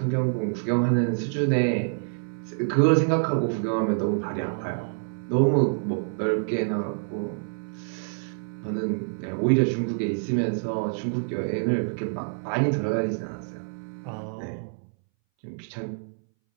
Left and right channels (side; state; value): left; silent; 60 dB below the other